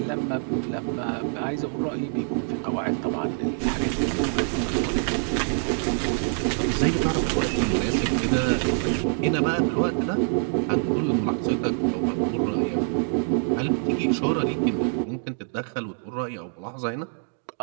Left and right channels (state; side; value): silent; left; 60 dB below the other